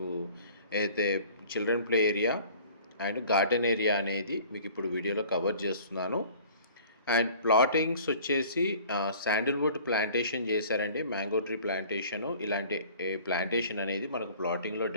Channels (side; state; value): both; inverted; correlation -0.49